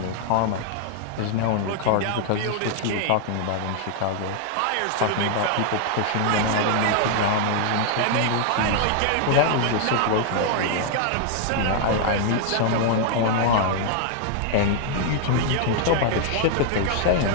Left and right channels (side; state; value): both; different; correlation 0.00